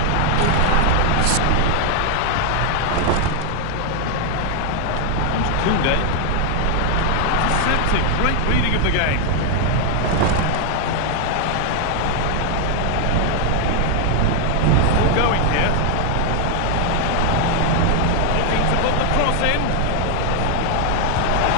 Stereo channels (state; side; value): different; both; correlation 0.00